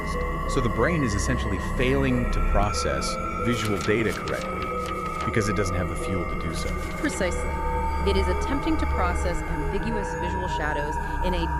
So the brain is essentially failing to process visual data correctly because it doesn't have the fuel to do so. Precisely. It is attempting to process ambiguous visual shadows in a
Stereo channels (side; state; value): both; identical; correlation 1.00